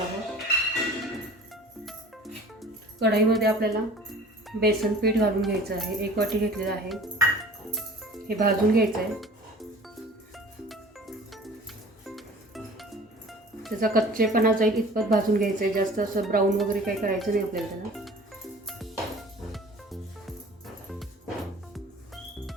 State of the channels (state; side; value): normal; both; correlation 0.45